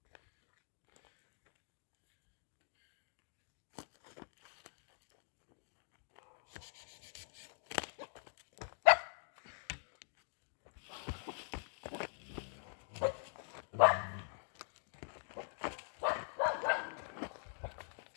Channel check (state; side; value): silent; right; digital silence